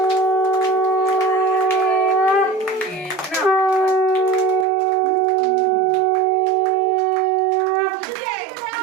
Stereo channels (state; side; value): drops out; left; at 4.7 s